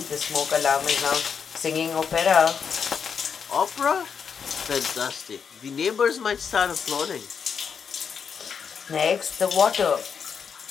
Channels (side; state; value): right; quieter; 6.6 dB